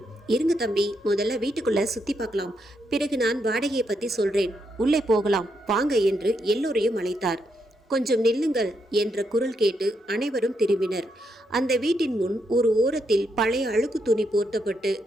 இருங்க தம்பி, முதல்ல வீட்டுக்குள்ளே சுற்றி பார்க்கலாம், பிறகு நான் வாடகையை பற்றி சொல்கிறேன், உள்ளே போகலாம் வாங்க என்று எல்லோரையும் அழைத்தார். கொஞ்சம் நில்லுங்கள் என்ற குரல் கேட்டு அனைவரும் திரும்பினர். அந்த வீட்டின் முன் ஒரு ஓரத்தில் பழைய அழுக்கு துணி போர்த்தப்பட்டு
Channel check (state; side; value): normal; both; correlation 0.80